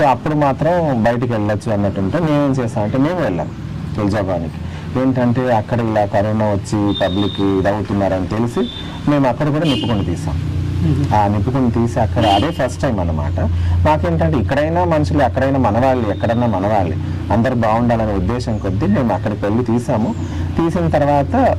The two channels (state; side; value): identical; both; correlation 1.00